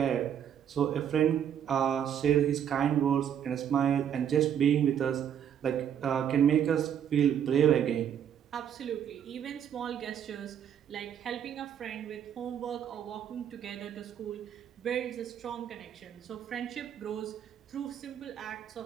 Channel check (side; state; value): left; quieter; 9.1 dB